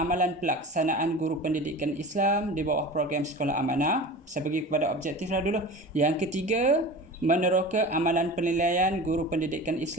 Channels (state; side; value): normal; both; correlation 0.34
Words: pelaksanaan guru pendidikan Islam di bawah program Sekolah Amanah. Saya pergi kepada objektif lah dulu. Yang ketiga, meneroka amalan penilaian guru pendidikan